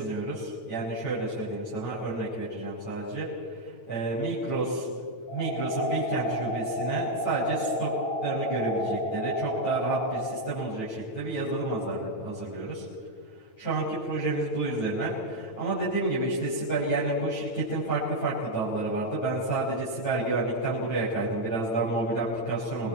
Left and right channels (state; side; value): late; right; 9.1 ms